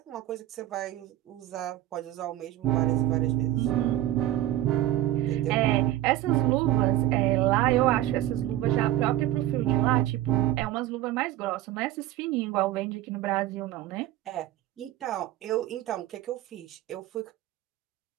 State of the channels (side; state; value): left; quieter; 14.0 dB